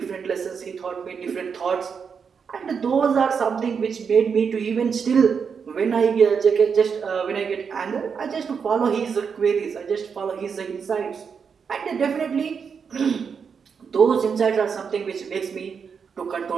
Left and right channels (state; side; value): quieter; left; 6.3 dB